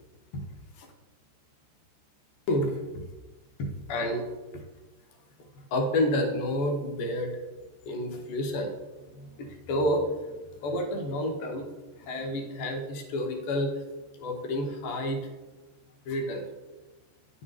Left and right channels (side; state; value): right; late; 14 ms